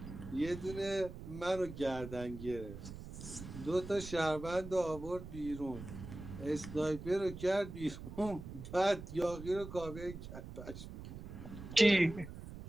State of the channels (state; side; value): noise; right; rumble, 11 dB below the sound